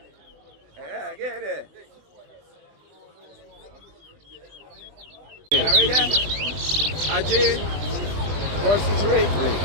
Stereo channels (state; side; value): late; left; 20 ms